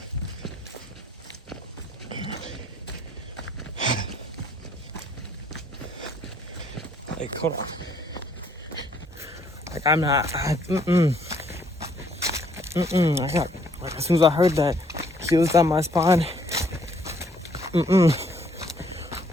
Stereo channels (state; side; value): normal; both; correlation 0.65